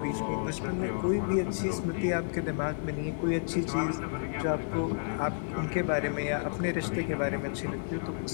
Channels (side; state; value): right; silent; digital silence